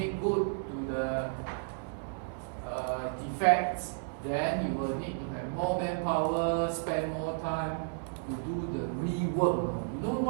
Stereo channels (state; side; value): silent; left; 56 dB below the other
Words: good to the defects, then you will need to have more manpower, spend more time to do the rework. You know